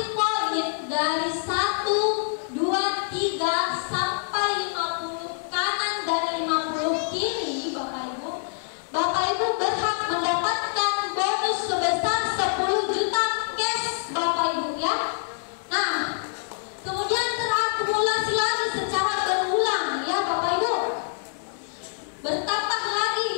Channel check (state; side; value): silent; right; digital silence